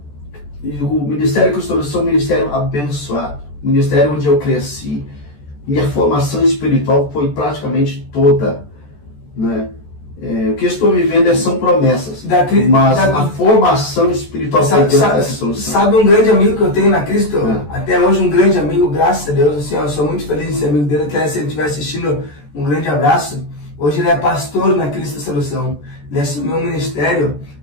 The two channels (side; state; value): right; late; 14 ms